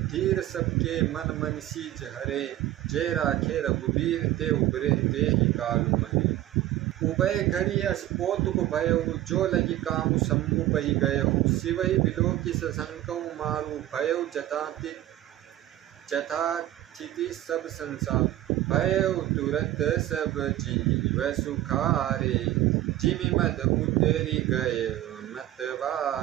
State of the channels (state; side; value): quieter; left; 14.1 dB